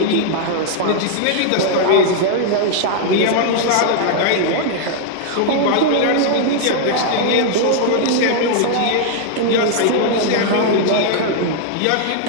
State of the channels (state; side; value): different; both; correlation -0.01